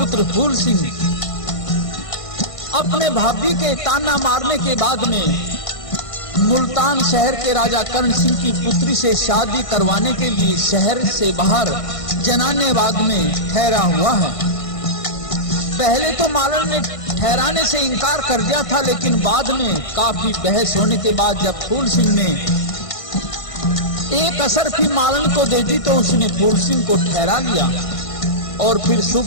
फूल सिंह अपने भाभी के ताना मारने के बाद में मुल्तान शहर के राजा कर्ण सिंह की पुत्री से शादी करवाने के लिए शहर से बाहर जनाने बाग में ठहरा हुआ है। पहले तो मालन ने ठहराने से इनकार कर दिया था, लेकिन बाद में काफी बहस होने के बाद जब फूल सिंह ने एक असरफी मालन को दे दी तो उसने फूल सिंह को ठहरा लिया। और फिर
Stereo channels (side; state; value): right; late; 1.5 ms